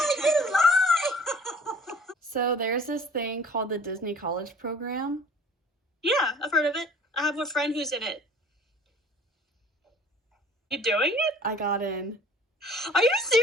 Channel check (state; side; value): normal; both; correlation 0.49